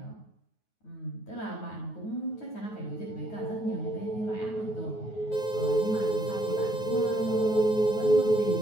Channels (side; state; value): right; late; 9.4 ms